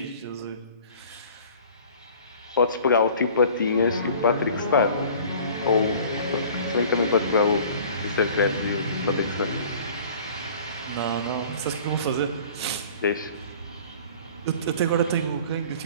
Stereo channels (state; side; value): inverted; both; correlation -0.47